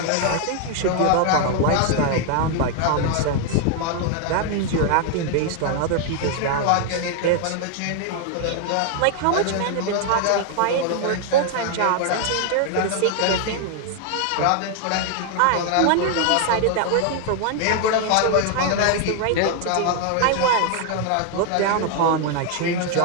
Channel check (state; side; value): different; both; correlation 0.00